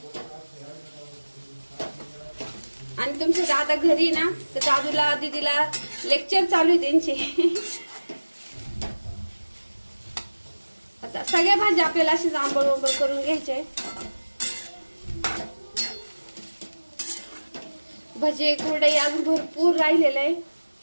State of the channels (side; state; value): both; inverted; correlation -1.00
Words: आणि तुमचे दादा घरी ना, तर दादूला दीदीला लेक्चर चालू आहे त्यांचे. आता सगळ्या भाज्या आपल्याला अशी आंबळ वंबळ करून घ्यायचे. भजे कुरडई अजून भरपूर राहिलेलं आहे.